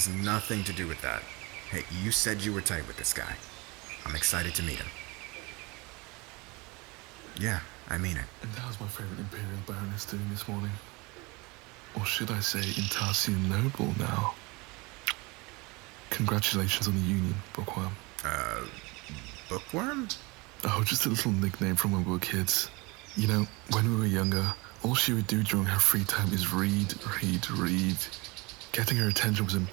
nothing to do with that. Hey, you said you were tight with this guy. I'm excited to meet him. Yeah, I mean it. And how's my favorite Imperial Baroness doing this morning? Or should I say Intarsian Noble now? Congratulations on the union, Bookworm. Bookworm? Oh, just a little nickname from when we were kids. You know, when we were younger, all she would do during her free time is read. Getting her attention was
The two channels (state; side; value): quieter; left; 25.8 dB